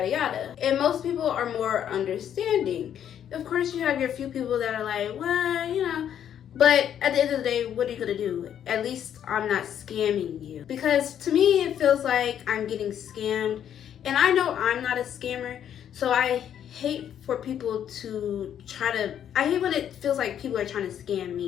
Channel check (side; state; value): right; quieter; 9.6 dB